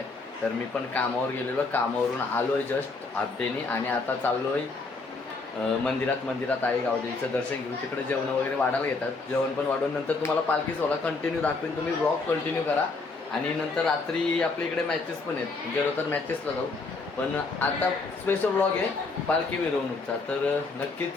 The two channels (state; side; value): quieter; right; 3.8 dB